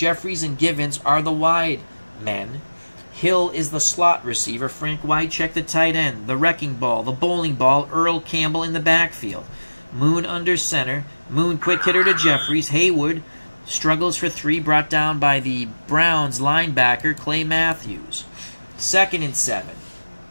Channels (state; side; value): inverted; both; correlation -1.00